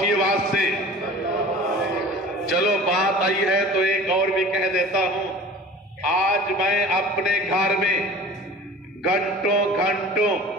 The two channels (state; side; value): normal; both; correlation 0.42